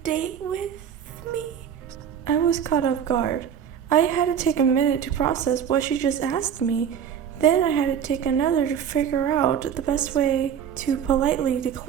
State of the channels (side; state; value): left; quieter; 8.5 dB